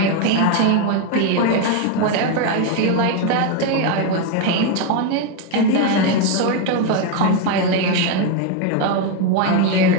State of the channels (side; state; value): both; different; correlation 0.02